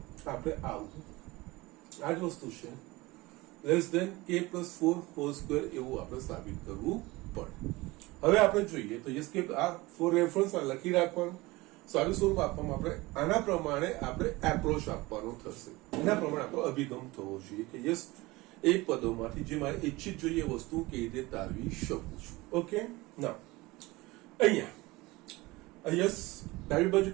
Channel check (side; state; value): left; quieter; 21.4 dB